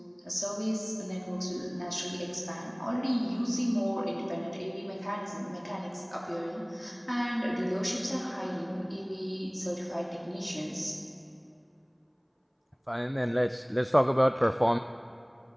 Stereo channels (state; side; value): identical; both; correlation 1.00